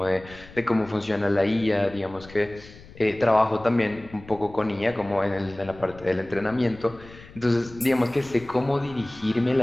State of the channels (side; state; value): left; noise; rumble, 20 dB below the sound